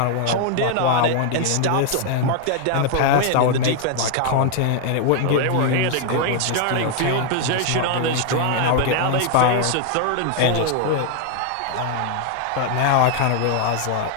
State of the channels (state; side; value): different; both; correlation 0.00